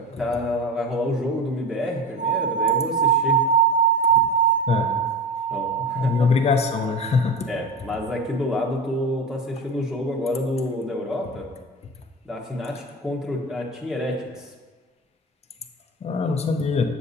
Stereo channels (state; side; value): normal; both; correlation 0.28